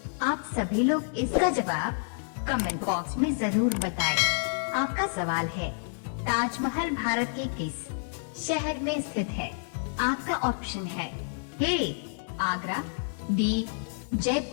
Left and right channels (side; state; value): right; silent; digital silence